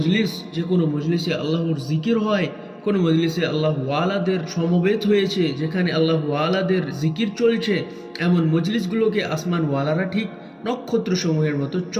কোনো মজলিসে আল্লাহর জিকির হয়, কোনো মজলিসে আল্লাহ ওয়ালাদের সমবেত হয়েছে, যেখানে আল্লাহ ওয়ালাদের জিকির চলছে, এমন মজলিসগুলোকে আসমান ওয়ালারা ঠিক নক্ষত্রসমূহের মতো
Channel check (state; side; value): identical; both; correlation 1.00